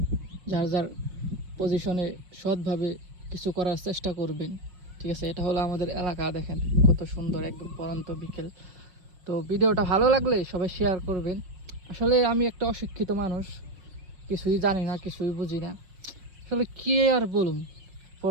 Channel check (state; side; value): late; left; 5.5 ms